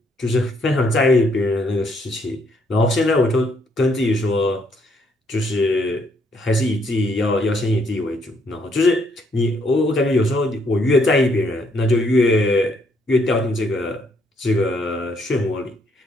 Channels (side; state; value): both; normal; correlation 0.71